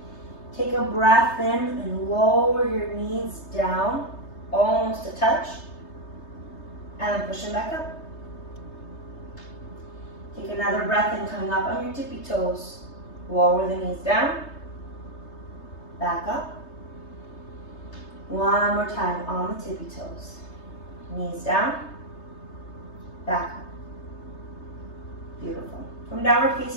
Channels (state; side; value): late; right; 3.3 ms